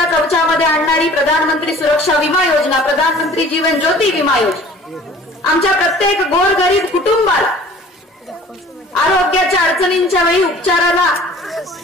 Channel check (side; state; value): both; normal; correlation 0.48